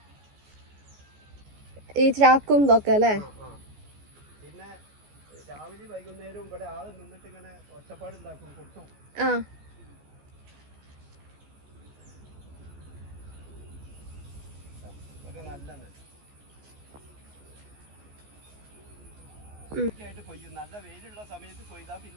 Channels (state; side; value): late; left; 14 ms